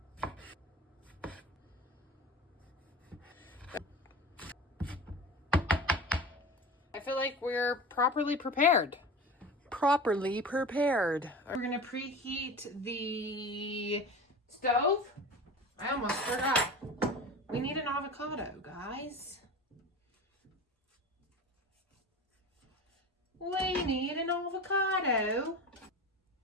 I feel like we're properly prepared. We're gonna preheat the stove. I almost forgot. We need an avocado, guys. We need an avocado.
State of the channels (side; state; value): both; normal; correlation 0.33